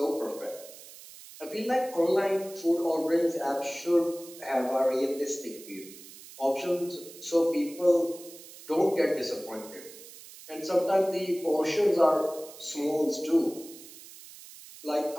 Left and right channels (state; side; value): noise; right; hiss, 17 dB below the sound